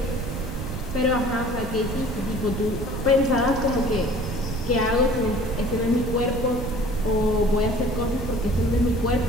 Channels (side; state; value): right; noise; rumble, 6 dB below the sound